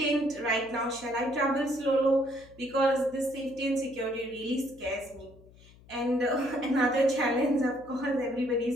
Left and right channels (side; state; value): left; noise; hum, 24 dB below the sound